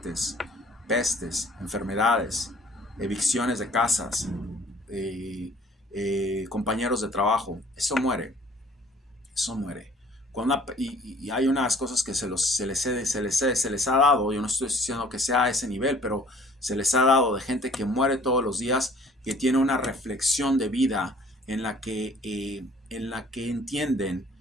pestes, enfermedades, evicciones de casas, compañeros de trabajo, eso muere. Y hay unas cosas que se les ha dado. Yo no estoy diciendo que sea a ese nivel, pero se les ha dado de gente que muere todos los días, que tiene una reflexión de vida en la que entienden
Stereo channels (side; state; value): both; normal; correlation 0.54